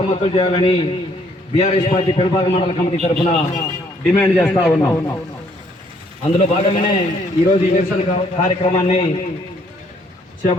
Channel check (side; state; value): both; normal; correlation 0.66